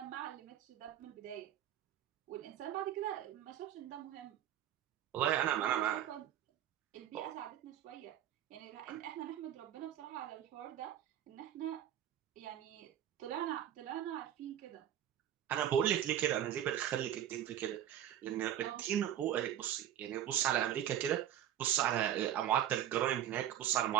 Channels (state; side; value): quieter; left; 11.0 dB